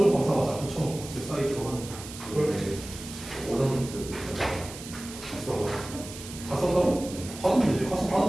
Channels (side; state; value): right; noise; hiss, 13 dB below the sound